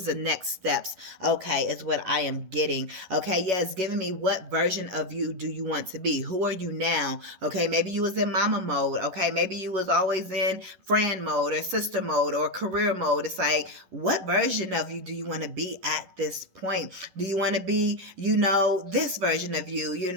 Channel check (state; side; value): late; left; 11 ms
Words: the next steps? Okay, is what I am getting. Okay, yeah, it's giving me what version of you do you want to be? Who are you now? Okay, maybe you was in mama mode. Okay, maybe you was always in friend mode or sister mode or career mode. It's like, what version of you do you want to be at this point? Do you want to be, this version of you?